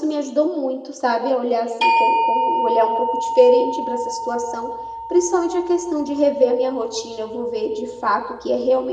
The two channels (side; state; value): both; identical; correlation 1.00